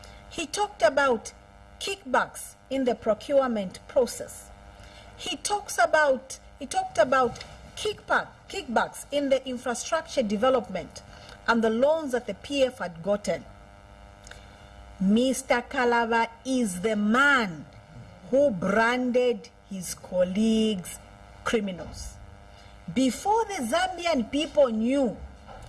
He talked about kickbacks in the procurement process. He talked about kickbacks in the infrastructure development and the loans that the PF had gotten. Mr. Kalaba is the man who branded his colleagues criminals. Before the Zambian people knew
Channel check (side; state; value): both; identical; correlation 1.00